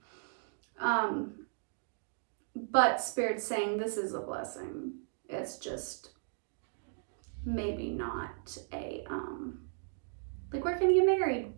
But Spirit's saying this is a blessing. It's just maybe not a, like, we're gonna get married.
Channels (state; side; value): silent; left; digital silence